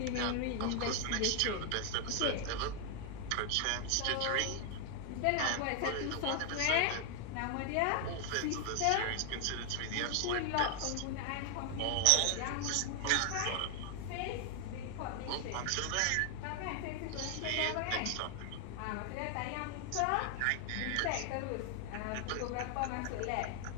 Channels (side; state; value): both; different; correlation 0.00